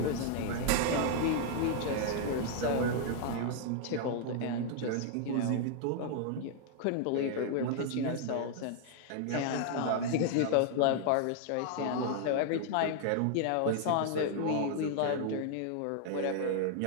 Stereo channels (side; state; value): both; different; correlation 0.00